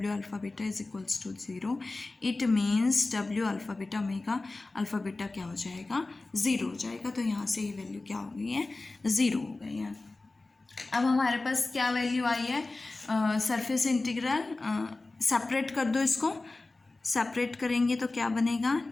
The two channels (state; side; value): quieter; right; 3.2 dB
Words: alpha beta is equals to 0। It means W alpha beta omega alpha beta क्या हो जाएगा, 0 हो जाएगा। तो यहाँ से ये वैल्यू क्या हो गई है, 0 हो गई है। अब हमारे पास क्या वैल्यू आई है, सरफेस इंटीग्रल सेपरेट कर दो, इसको सेपरेट करेंगे तो क्या बनेगा,